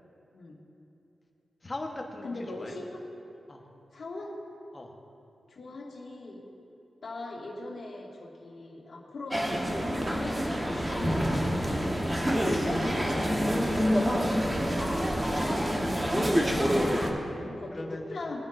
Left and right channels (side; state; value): both; normal; correlation 0.95